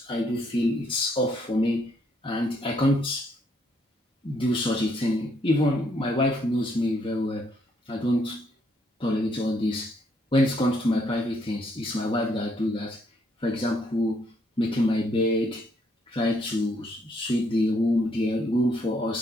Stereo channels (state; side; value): normal; both; correlation 0.71